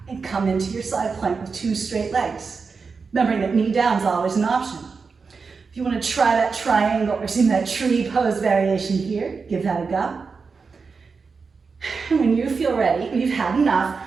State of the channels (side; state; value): left; quieter; 4.9 dB